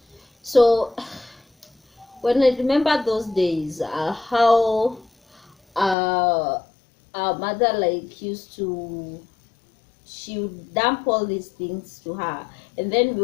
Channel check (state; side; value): drops out; right; at 6.0 s